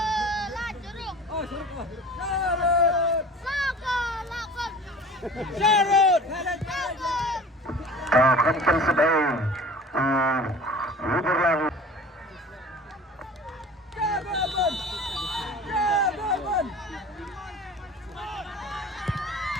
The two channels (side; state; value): both; normal; correlation 0.42